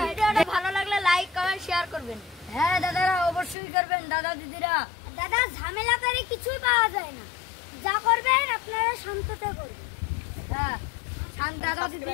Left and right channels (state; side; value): drops out; right; at 3.6 s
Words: ভালো লাগলে লাইক কমেন্ট শেয়ার করবেন। হ্যাঁ দাদারা অবশ্যই করবেন, দাদা দিদিরা। দাদা ঝামেলা করে কিছুই পাওয়া যায় না, যা করবেন আপনারা শান্ততে করবেন। হ্যাঁ দাদা